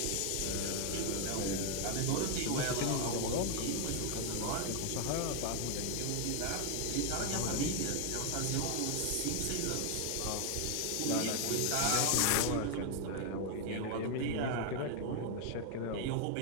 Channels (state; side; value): different; both; correlation 0.00